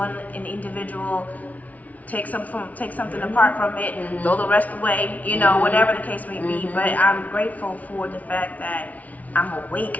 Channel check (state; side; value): late; right; 0.071 ms